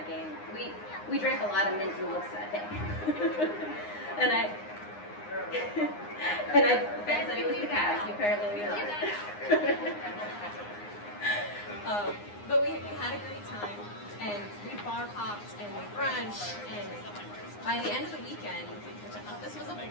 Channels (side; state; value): right; late; 9.7 ms